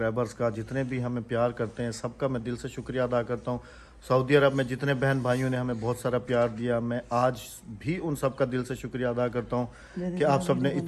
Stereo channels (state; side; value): identical; both; correlation 1.00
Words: का, जितने भी हमें प्यार करते हैं, सबका मैं दिल से शुक्रिया अदा करता हूँ। सऊदी अरब में जितने बहन भाइयों ने हमें बहुत सारा प्यार दिया, मैं आज भी उन सब का दिल से शुक्रिया अदा करता हूँ कि आप सब ने